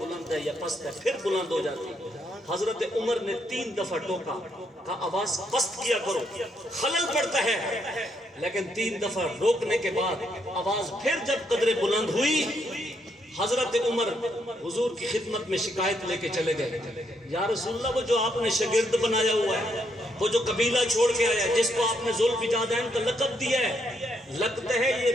ہے یا پست ہے، پھر بلند ہو جاتی۔ حضرت عمر نے 3 دفعہ ٹوکا، کہا آواز پست کیا کرو، خلل پڑتا ہے، لیکن 3 دفعہ روکنے کے بعد آواز پھر جب قدر بلند ہوئی، حضرت عمر حضور کی خدمت میں شکایت لے کے چلے گئے، یا رسول اللہ وہ جو آپ نے شاگرد بنایا ہوا ہے، وہ جو قبیلہ چھوڑ کے آیا ہے، جس کو آپ نے ذو البجادین کا لقب دیا ہے، لگتے ہیں یہ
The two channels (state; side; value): normal; both; correlation 0.76